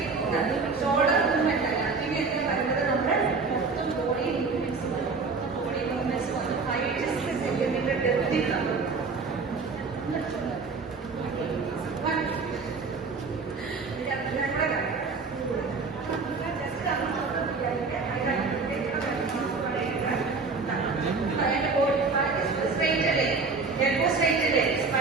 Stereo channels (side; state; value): left; quieter; 4.4 dB